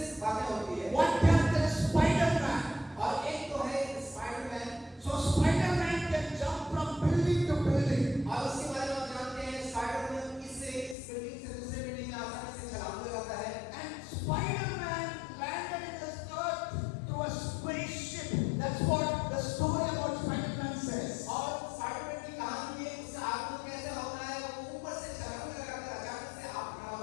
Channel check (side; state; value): right; drops out; at 11.0 s